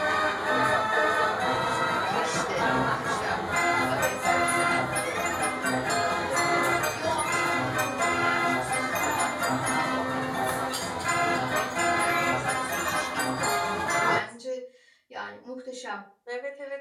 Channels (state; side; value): identical; both; correlation 1.00